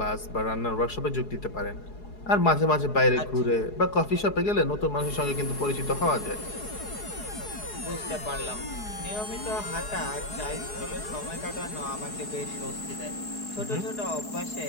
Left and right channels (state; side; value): late; right; 4.7 ms